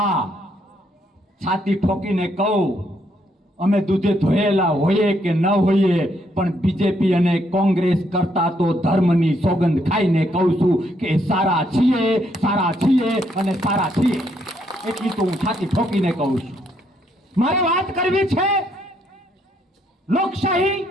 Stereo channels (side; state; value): both; normal; correlation 0.73